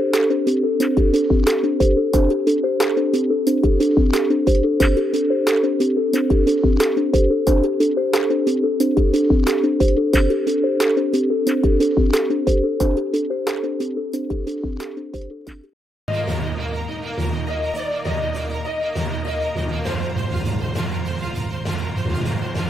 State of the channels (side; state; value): both; normal; correlation 0.85